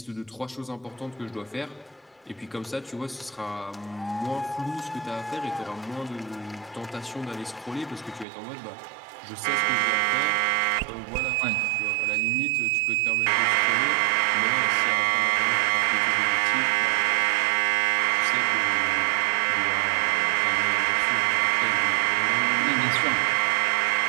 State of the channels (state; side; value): drops out; left; at 8.2 s